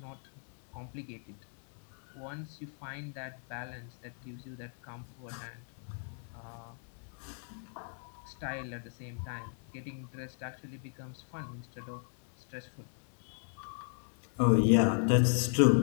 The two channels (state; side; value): silent; right; 54 dB below the other